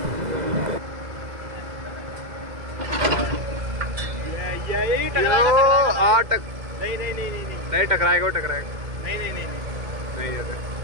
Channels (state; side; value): late; left; 2.1 ms